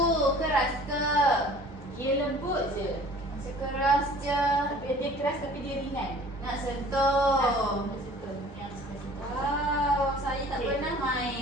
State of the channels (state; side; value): normal; both; correlation 0.48